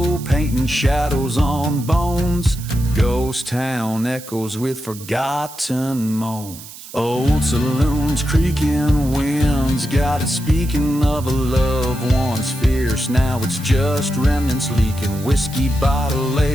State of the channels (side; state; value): right; noise; hiss, 16 dB below the sound